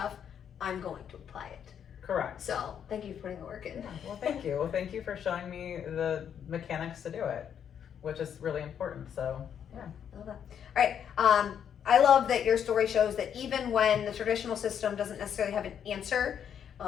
I'm going to apply it. Correct. So thank you for putting the work in. Yeah, well, thank you. Well, thank you for showing me the mechanics to do it, which is really important. So, yeah. I love that. All right. I love that your story shows that even when the traditional system doesn't necessarily have an answer,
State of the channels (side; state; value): right; quieter; 8.5 dB